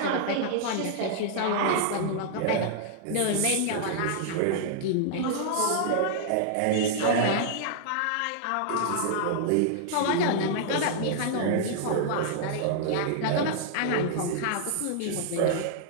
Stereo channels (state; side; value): different; both; correlation -0.01